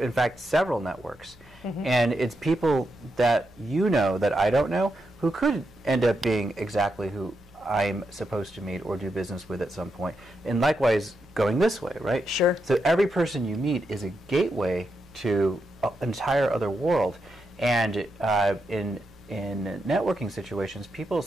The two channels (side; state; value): both; normal; correlation 0.84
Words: fact, several networks. And it's people that you know that I don't know who could end up being exactly who I'm supposed to meet or do business with at some point. And likewise, going this way, right? Sure. So every person you meet is a gateway to an entire other world. And in networking situations, people